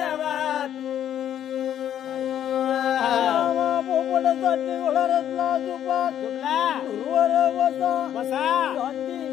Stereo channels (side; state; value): right; quieter; 10.4 dB